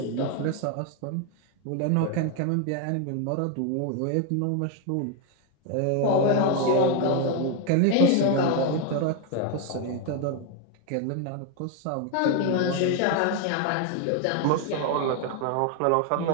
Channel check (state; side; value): different; both; correlation 0.01